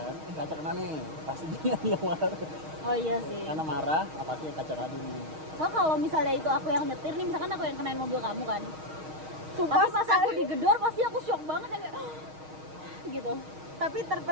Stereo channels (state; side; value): late; left; 6.4 ms